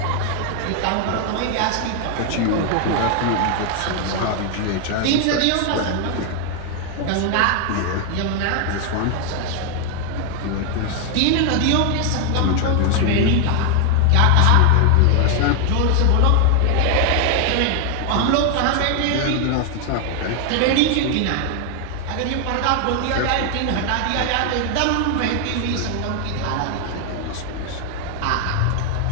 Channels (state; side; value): different; both; correlation 0.01